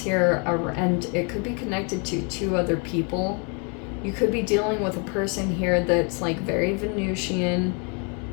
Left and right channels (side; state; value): right; quieter; 36.0 dB